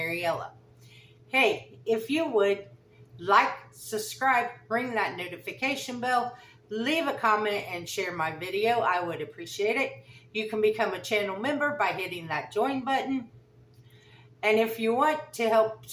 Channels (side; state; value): both; identical; correlation 1.00